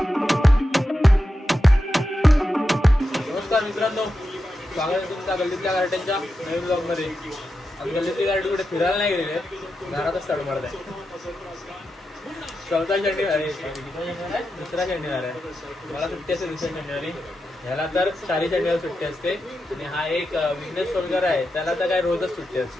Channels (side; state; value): both; normal; correlation 0.89